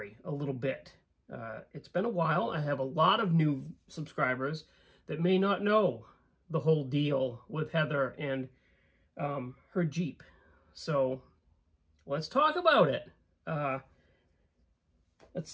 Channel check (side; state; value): both; identical; correlation 1.00